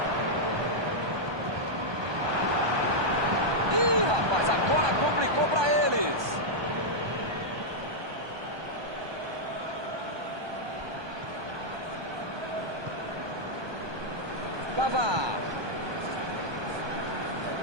Ih, rapaz, agora complicou para eles. Pavard.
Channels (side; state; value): left; late; 1.2 ms